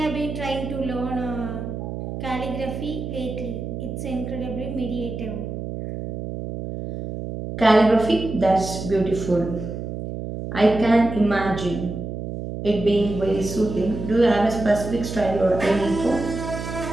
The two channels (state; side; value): noise; right; hum, 6 dB below the sound